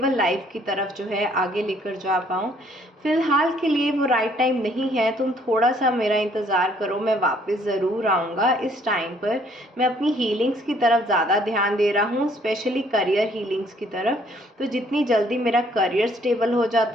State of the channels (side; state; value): both; normal; correlation 0.63